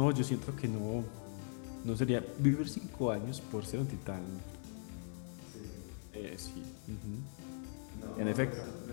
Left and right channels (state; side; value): silent; right; 51 dB below the other